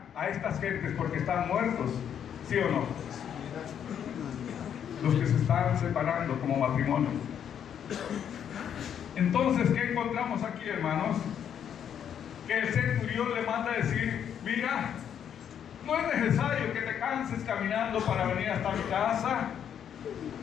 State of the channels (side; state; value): right; quieter; 8.8 dB